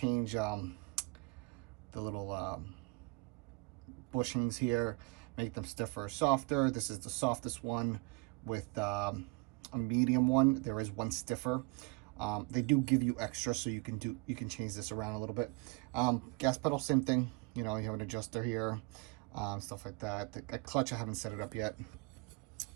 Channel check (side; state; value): left; quieter; 27.6 dB